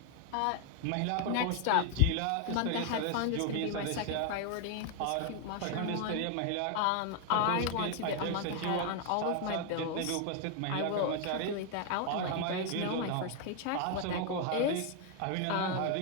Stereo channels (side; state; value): both; different; correlation 0.00